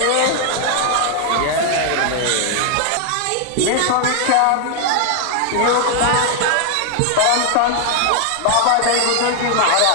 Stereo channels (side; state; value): both; different; correlation 0.00